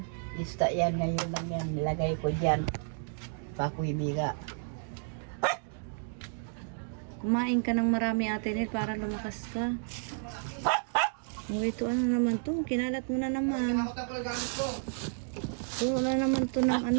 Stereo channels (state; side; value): silent; left; 57 dB below the other